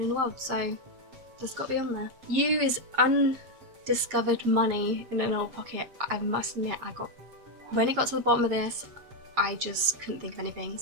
in the world. So that's got to be on there. U is undiscovered money in an old pocket. I must admit, when it got to the bottom of this, I just couldn't think of anything.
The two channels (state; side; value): late; left; 7.6 ms